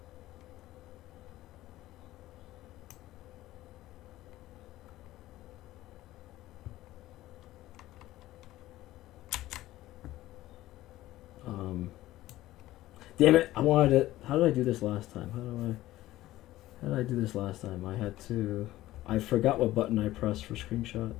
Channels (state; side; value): quieter; right; 15.8 dB